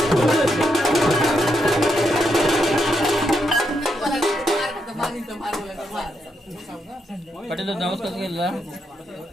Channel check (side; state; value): both; normal; correlation 0.80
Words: पटेल डाऊस कसं केला?